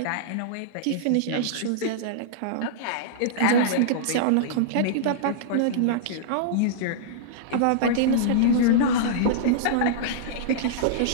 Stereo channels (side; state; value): both; different; correlation -0.02